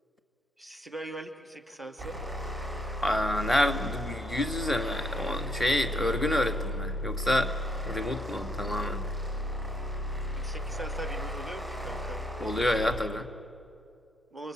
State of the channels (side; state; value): both; normal; correlation 0.72